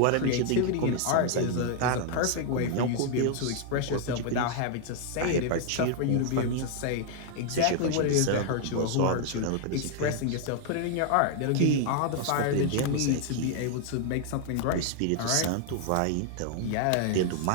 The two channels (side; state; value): both; different; correlation 0.00